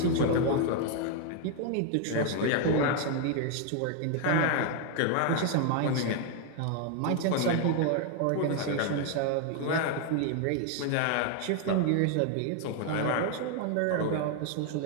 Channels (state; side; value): different; both; correlation 0.00